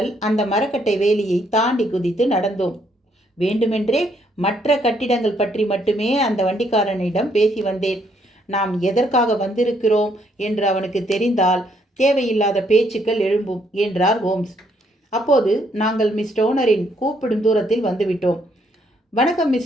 அந்த மரக்கட்டை வேலியை தாண்டி குதித்து நடந்தோம். வேண்டுமென்றே மற்ற கட்டிடங்கள் பற்றி மட்டுமே அந்த வண்டிக்காரனிடம் பேசி வந்தேன். நாம் எதற்காக வந்திருக்கிறோம் என்று அவனுக்கு தெரிந்தால் தேவையில்லாத பேச்சுக்கள் எழும்பும் என்றார் ஹோம்ஸ். அப்போது நாங்கள் மிஸ் டோனரின் கூப்பிடும் தூரத்தில் வந்துவிட்டோம். வணக்கம்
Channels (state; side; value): normal; both; correlation 0.71